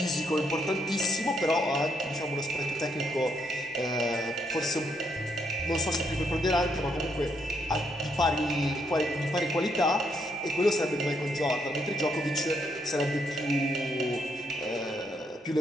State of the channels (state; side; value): normal; both; correlation 0.75